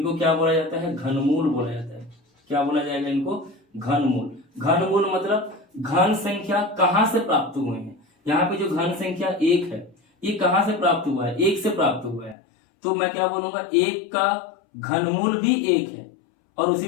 क्या बोला जाता है, घनमूल बोला जाता है। क्या बोला जाएगा इनको, घनमूल। घनमूल मतलब घन संख्या कहां से प्राप्त हुए हैं। यहाँ पे जो घन संख्या 1 है ये कहां से प्राप्त हुआ है, 1 से प्राप्त हुआ है, तो मैं क्या बोलूंगा, 1 का घनमूल भी 1 है, और उसी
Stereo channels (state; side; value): drops out; right; at 12.4 s